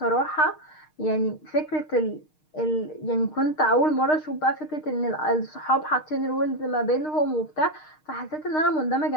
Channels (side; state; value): right; late; 6.5 ms